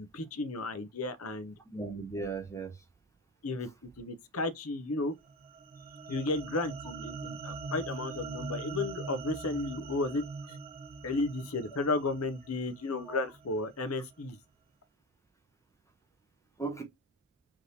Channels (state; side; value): normal; both; correlation 0.24